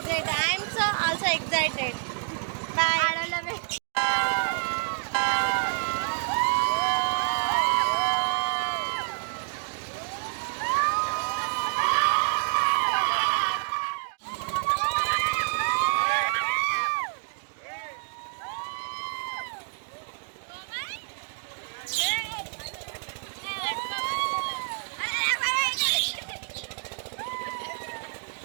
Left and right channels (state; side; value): silent; left; digital silence